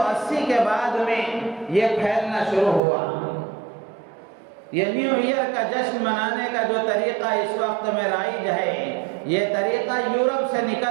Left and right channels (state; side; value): drops out; left; at 2.8 s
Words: کے بعد میں یہ پھیلنا شروع ہوا۔ یہ نیو ایئر کا جشن منانے کا جو طریقہ اس وقت میں رائج ہے، یہ طریقہ یورپ سے